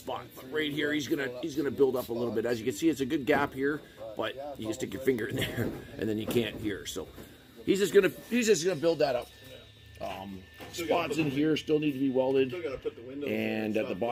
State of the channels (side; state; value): both; identical; correlation 1.00